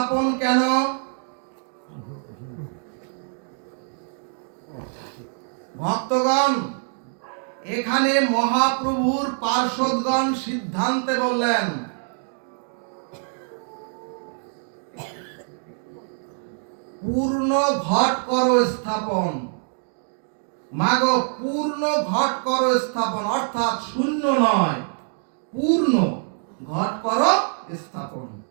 কেন? ভক্তগণ, এখানে মহাপ্রভুর পার্ষদগণ সিদ্ধান্তে বললেন, পূর্ণ ঘট করো স্থাপন। মাগো, পূর্ণ ঘট করো স্থাপন, অর্থাৎ শূন্য নয়, পূর্ণ ঘট করো স্থাপন।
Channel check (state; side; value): silent; left; 57 dB below the other